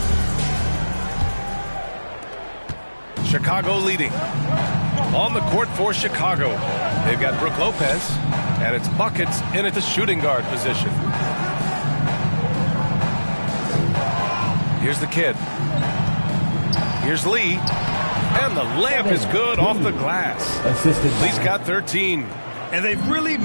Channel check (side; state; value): both; inverted; correlation -1.00